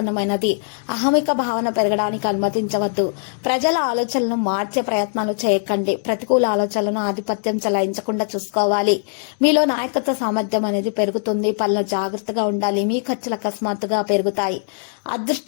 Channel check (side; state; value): right; silent; digital silence